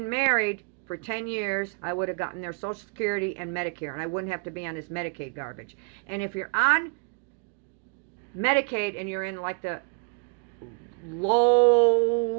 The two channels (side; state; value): left; quieter; 36.7 dB